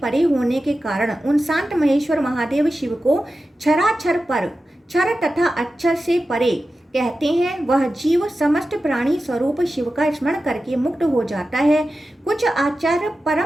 होने के कारण उन शांत महेश्वर महादेव शिव को क्षराक्षर पर क्षर तथा अक्षर से परे कहते हैं। वह जीव समस्त प्राणी स्वरूप शिव का स्मरण करके मुक्त हो जाता है। कुछ आचार्य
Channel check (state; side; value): normal; both; correlation 0.93